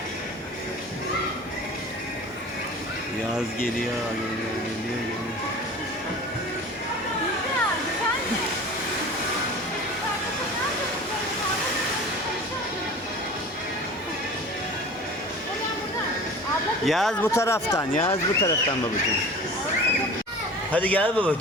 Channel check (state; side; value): normal; both; correlation 0.39